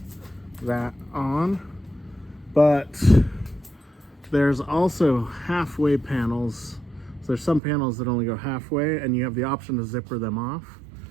that on, but there's also halfway panels. So there's some panels that only go halfway, and you have the option to zipper them off.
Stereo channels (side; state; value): left; drops out; at 7.6 s